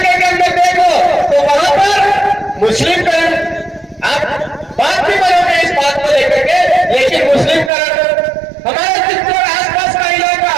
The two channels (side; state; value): left; drops out; at 7.7 s